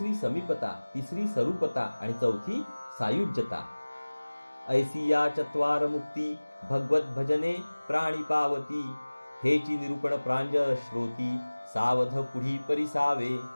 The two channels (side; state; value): both; inverted; correlation -1.00